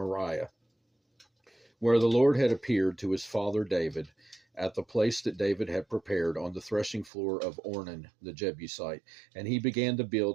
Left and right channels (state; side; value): drops out; left; at 7.1 s